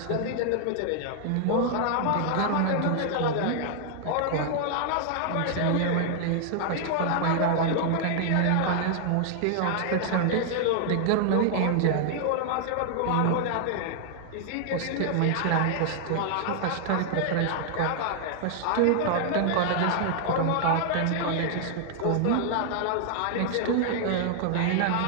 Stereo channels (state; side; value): different; both; correlation 0.00